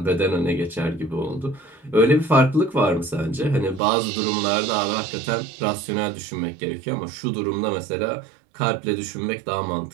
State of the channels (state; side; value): drops out; left; at 3.8 s